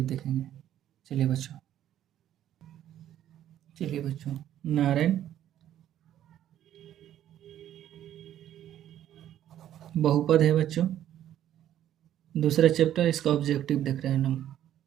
देखेंगे। चलिए बच्चों, नारायण बहुपद है बच्चों। दूसरा चैप्टर, इसका ऑब्जेक्टिव देख रहे हैं हम।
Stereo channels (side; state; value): left; quieter; 11.5 dB